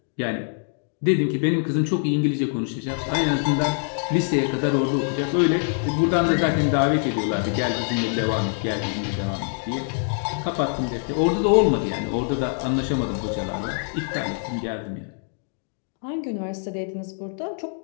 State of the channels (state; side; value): silent; right; 60 dB below the other